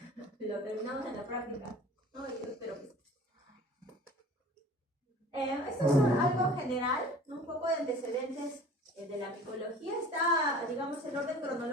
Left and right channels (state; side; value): normal; both; correlation 0.45